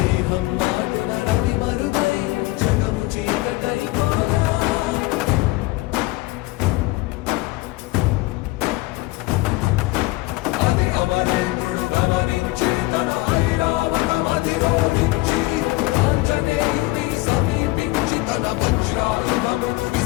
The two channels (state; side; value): quieter; right; 20.7 dB